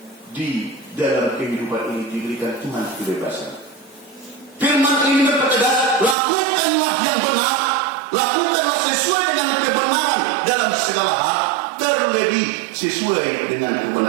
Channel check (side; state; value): left; drops out; at 6.2 s